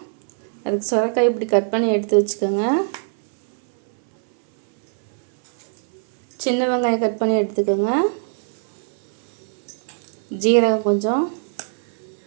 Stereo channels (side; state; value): left; silent; 59 dB below the other